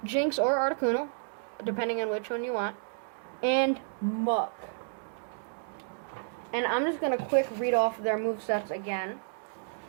Jynx or Articuno, depending on which one you want, and Muck. And I'm just going to quick read off their movesets again.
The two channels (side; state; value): left; silent; digital silence